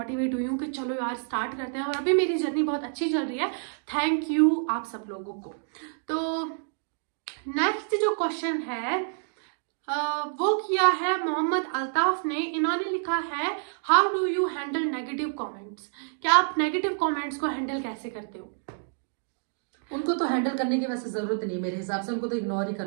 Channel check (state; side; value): silent; left; digital silence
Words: हुई हूँ कि चलो यार स्टार्ट करते हैं, और अभी मेरी जर्नी बहुत अच्छी चल रही है, थैंक यू आप सब लोगों को। तो नेक्स्ट जो क्वेश्चन है वो किया है मोहम्मद अल्ताफ ने, इन्होंने लिखा है how do you handle negative comments, क्या आप नेगेटिव कमेंट्स को हैंडल कैसे करते हो? उनको तो हैंडल करने की वैसे जरूरत नहीं, मेरे हिसाब से उनको तो इग्नोर ही